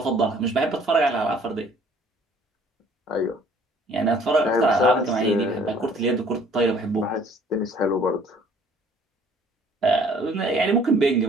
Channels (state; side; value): normal; both; correlation 0.56